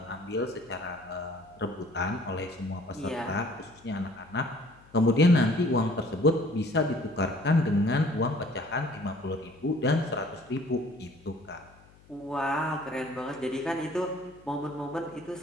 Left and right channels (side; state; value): left; noise; hum, 26 dB below the sound